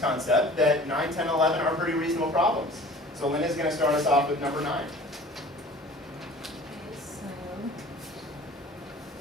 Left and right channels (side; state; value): both; normal; correlation 0.45